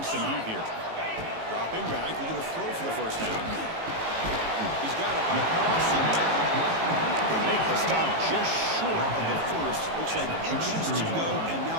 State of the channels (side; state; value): left; late; 18 ms